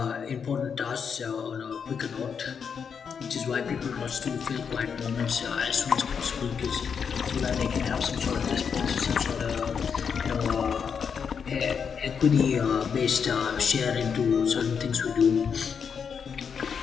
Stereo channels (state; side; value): quieter; right; 6.6 dB